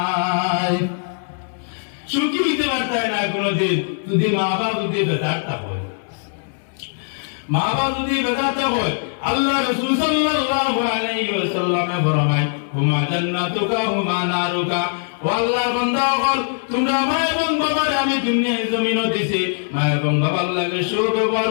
সুখী হইতে পারতাই না কোনোদিন। যদি মা বাবা যদি বেদারটা হয়, মা বাবা যদি বেদারটা হয় আল্লাহ রাসূল সাল্লাল্লাহু আলাইহি ওয়াসাল্লামে ফরমায় হুমা জান্নাতুকা হুমা নারুকা ও আল্লাহর বান্দা হল তোমরা মা এবং বাবার আমি দুনিয়ায় জমিন দিছি মা এবং বাবার লাগে সুব্যবহার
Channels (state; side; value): silent; right; 65 dB below the other